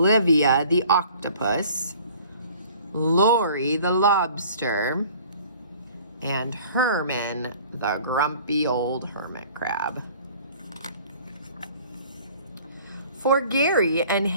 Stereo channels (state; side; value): inverted; both; correlation -0.50